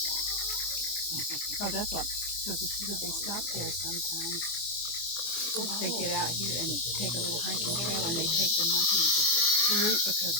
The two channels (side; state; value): right; late; 25 ms